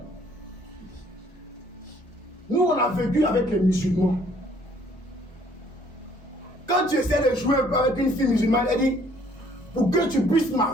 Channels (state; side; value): normal; both; correlation 0.61